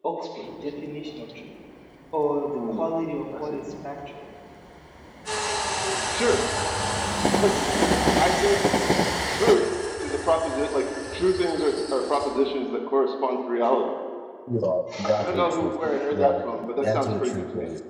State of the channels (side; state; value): both; identical; correlation 1.00